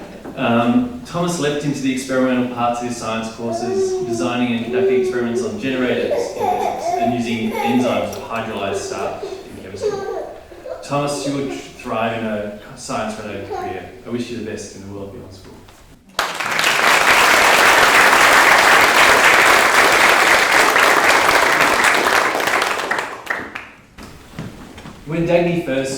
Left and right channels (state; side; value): identical; both; correlation 1.00